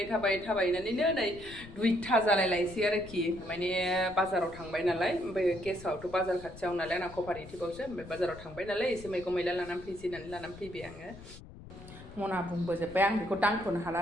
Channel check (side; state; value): left; noise; rumble, 17 dB below the sound